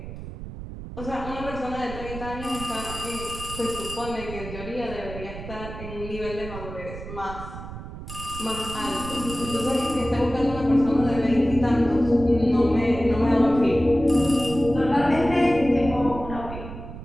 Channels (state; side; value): noise; right; rumble, 11 dB below the sound